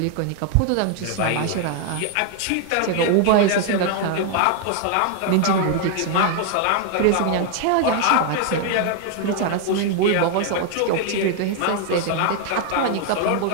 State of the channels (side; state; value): both; different; correlation 0.00